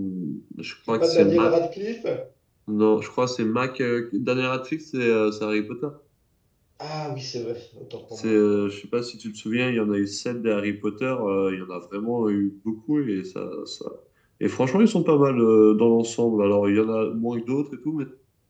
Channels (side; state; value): both; identical; correlation 1.00